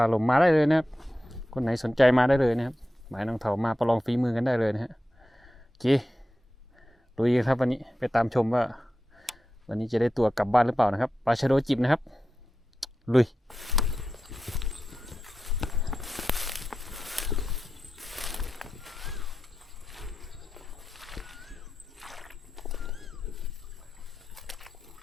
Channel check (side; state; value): both; normal; correlation 0.91